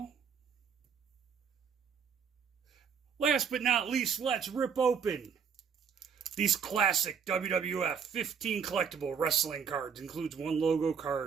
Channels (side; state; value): left; quieter; 6.7 dB